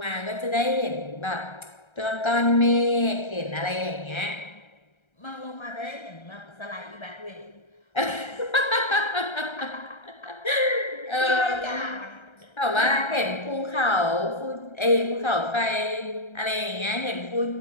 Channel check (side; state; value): right; late; 1.3 ms